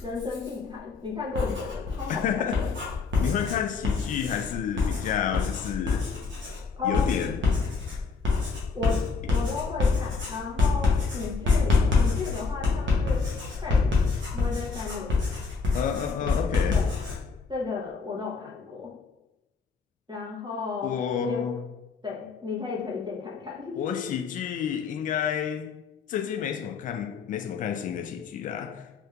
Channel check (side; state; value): right; quieter; 4.7 dB